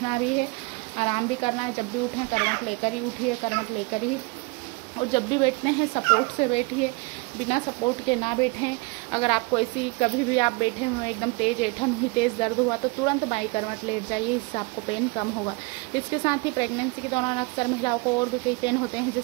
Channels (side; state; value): left; quieter; 27.1 dB